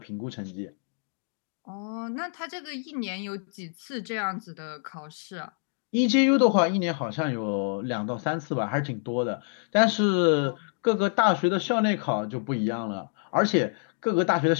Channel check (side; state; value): right; silent; digital silence